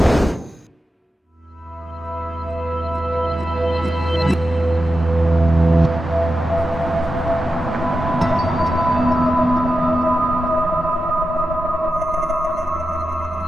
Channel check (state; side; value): normal; both; correlation 0.91